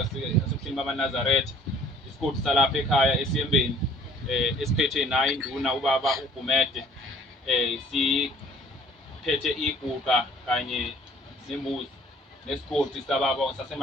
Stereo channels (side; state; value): both; normal; correlation 0.54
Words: asebuhleni bamaNazaretha isigodi salapha ekhaya esiyembeni esiphethe nayo induna ubaba uGumede siphethe iguqa kanye nembuzi nesigodi sababa